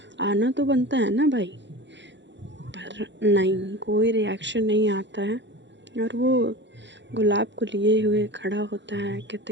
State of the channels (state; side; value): late; left; 0.52 ms